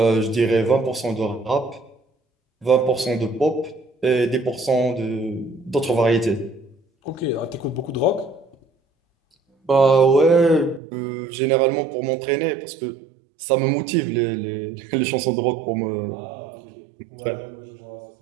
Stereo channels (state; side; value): drops out; left; at 10.8 s